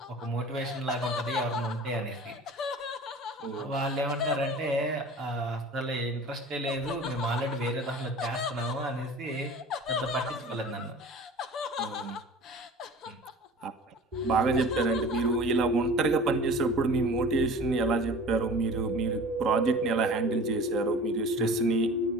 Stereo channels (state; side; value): normal; both; correlation 0.41